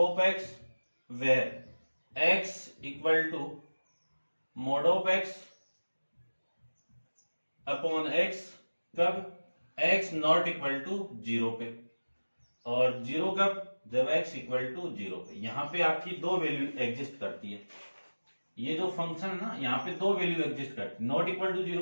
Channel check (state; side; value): inverted; both; correlation -1.00